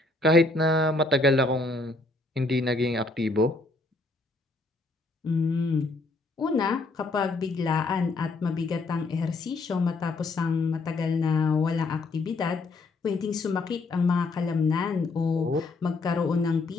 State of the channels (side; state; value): right; quieter; 3.2 dB